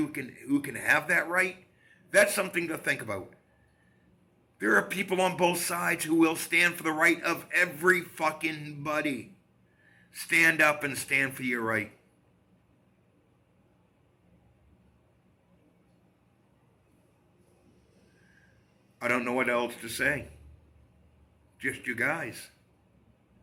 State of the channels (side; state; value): both; identical; correlation 1.00